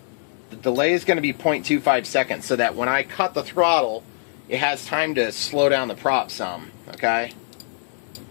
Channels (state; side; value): silent; right; digital silence